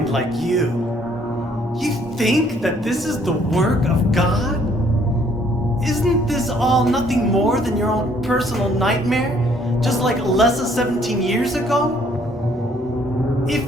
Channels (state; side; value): normal; both; correlation 0.63